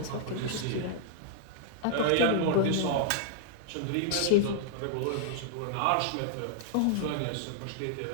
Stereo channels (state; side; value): different; both; correlation -0.01